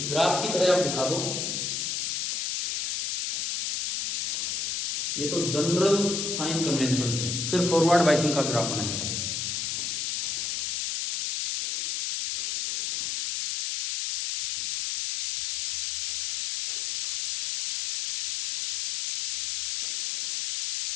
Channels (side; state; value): left; noise; hiss, 1 dB below the sound